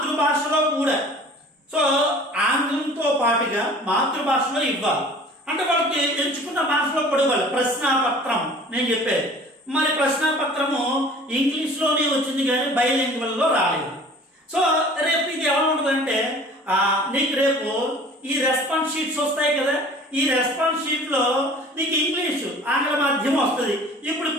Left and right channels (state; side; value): normal; both; correlation 0.47